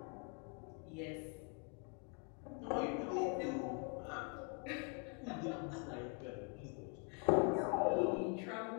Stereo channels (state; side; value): quieter; right; 36.8 dB